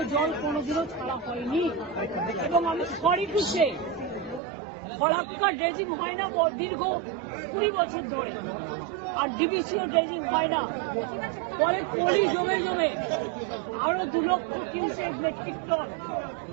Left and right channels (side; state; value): left; drops out; at 4.4 s